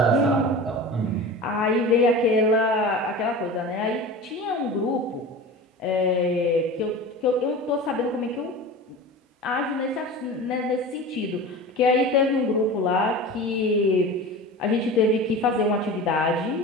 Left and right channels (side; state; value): both; normal; correlation 0.33